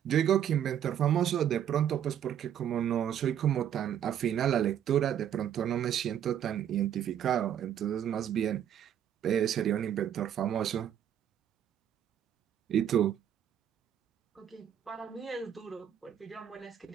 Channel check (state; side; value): quieter; left; 9.8 dB